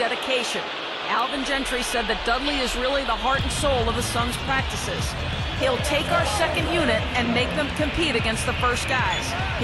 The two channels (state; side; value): identical; both; correlation 1.00